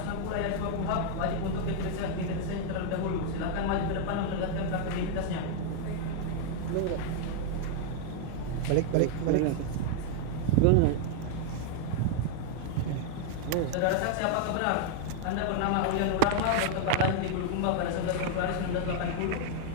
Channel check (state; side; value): different; both; correlation 0.00